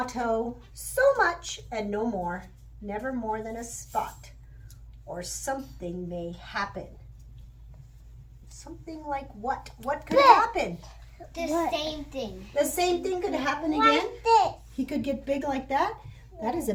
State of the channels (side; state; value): both; identical; correlation 1.00